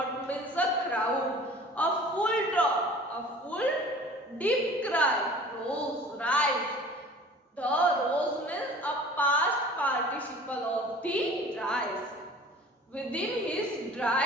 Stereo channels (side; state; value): both; normal; correlation 0.45